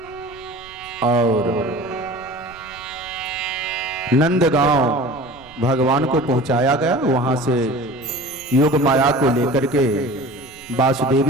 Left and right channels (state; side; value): noise; right; rumble, 25 dB below the sound